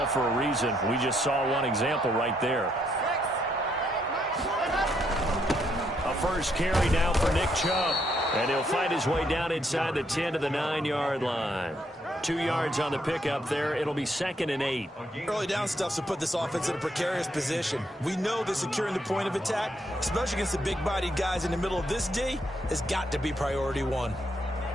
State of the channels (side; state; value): both; normal; correlation 0.74